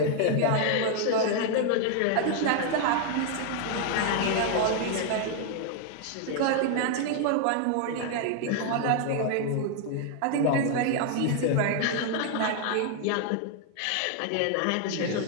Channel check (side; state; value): both; different; correlation 0.00